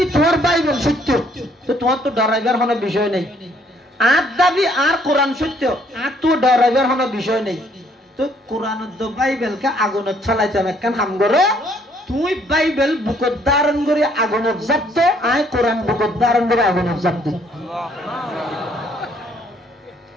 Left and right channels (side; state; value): both; normal; correlation 0.65